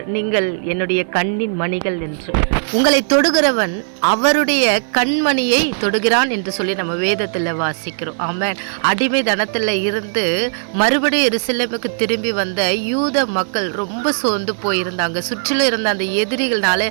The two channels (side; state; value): left; silent; 56 dB below the other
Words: நீங்கள் என்னுடைய கண்ணின் மணிகள் என்று. உங்களை தொடுகிறவன் அவருடைய கண்மணியை தொடுகிறான் என்று சொல்லி நம்ம வேதத்தில் வாசிக்கிறோம். ஆமென். அடிமை தனத்தில் இருந்து மறுபடியும் எருசலேமுக்கு திரும்பி வந்த யூத மக்கள் ரொம்ப சோர்ந்து போயிருந்தாங்க. சுற்றிலும் இருந்த அந்த